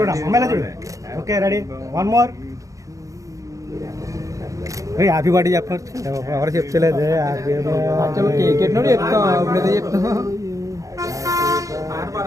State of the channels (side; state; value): left; late; 0.16 ms